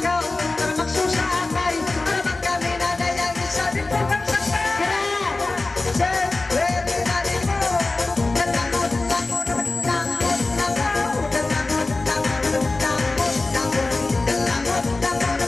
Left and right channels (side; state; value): right; quieter; 3.3 dB